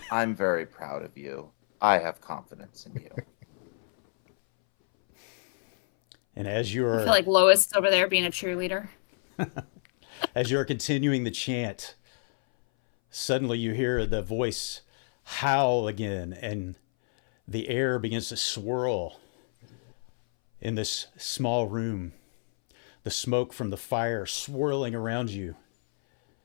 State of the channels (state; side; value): silent; right; 59 dB below the other